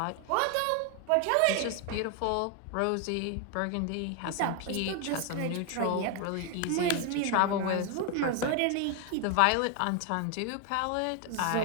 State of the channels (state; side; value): different; both; correlation 0.01